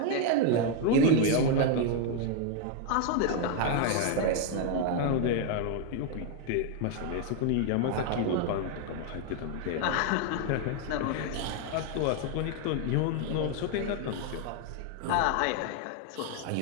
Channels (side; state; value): both; different; correlation 0.00